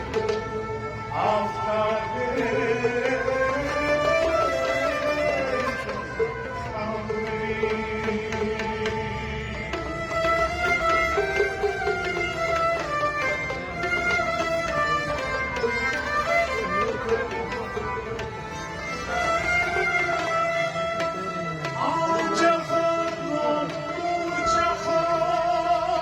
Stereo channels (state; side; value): identical; both; correlation 1.00